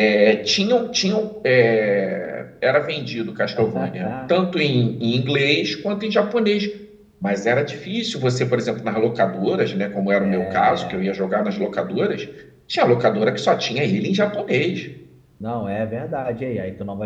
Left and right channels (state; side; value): identical; both; correlation 1.00